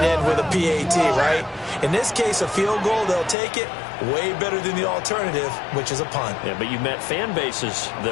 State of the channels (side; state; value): right; drops out; at 3.4 s